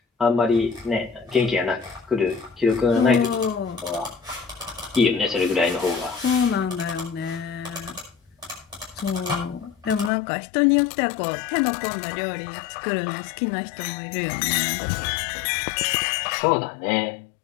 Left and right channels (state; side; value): drops out; right; at 10.1 s